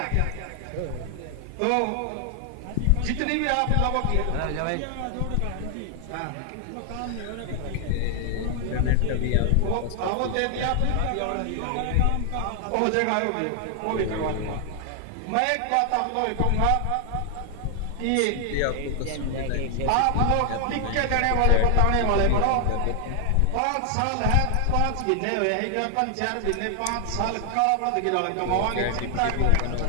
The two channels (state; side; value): different; both; correlation 0.00